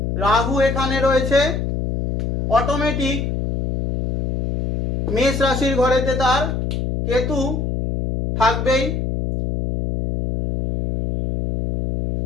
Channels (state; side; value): noise; left; hum, 2 dB below the sound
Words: রাহু এখানে রয়েছে অটোমেটিক মেষ রাশির ঘরেতে তার কেতু থাকবেই।